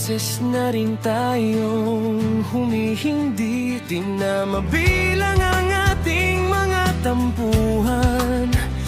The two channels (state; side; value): identical; both; correlation 1.00